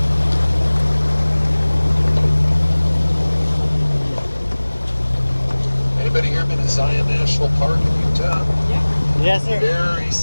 Anybody here been to Zion National Park in Utah? Yeah. Yes, sir. Very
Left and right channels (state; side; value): inverted; both; correlation -1.00